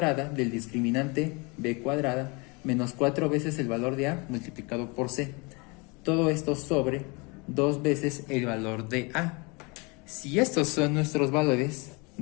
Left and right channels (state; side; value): quieter; right; 29.0 dB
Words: del discriminante b cuadrada menos 4 veces el valor de A multiplicado por C. Todo esto sobre 2 veces el valor de A. Si estos son nuestros valores